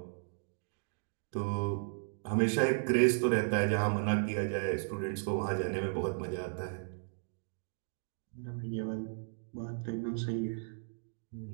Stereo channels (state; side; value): silent; left; digital silence